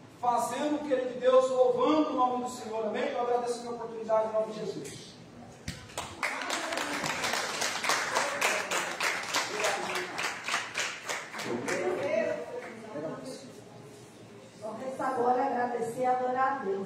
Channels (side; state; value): both; identical; correlation 1.00